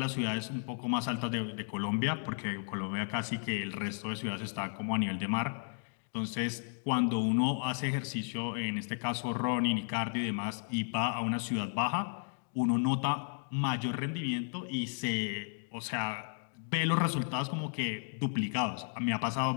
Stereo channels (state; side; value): silent; right; 55 dB below the other